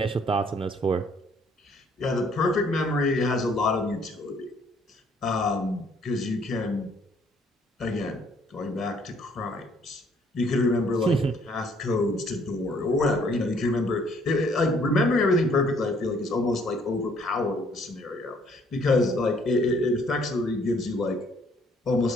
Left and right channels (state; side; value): normal; both; correlation 0.64